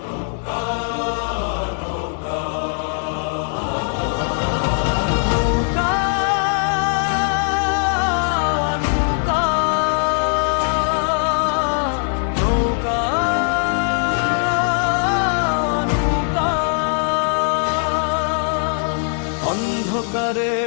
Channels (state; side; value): silent; right; 57 dB below the other